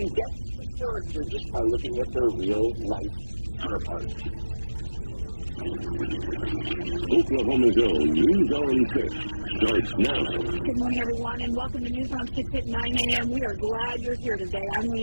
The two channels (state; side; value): inverted; both; correlation -1.00